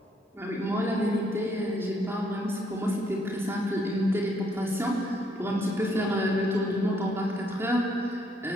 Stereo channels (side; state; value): both; normal; correlation 0.70